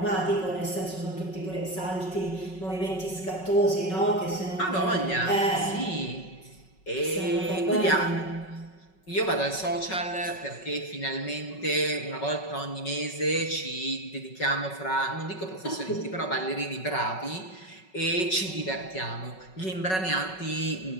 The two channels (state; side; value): late; right; 5.4 ms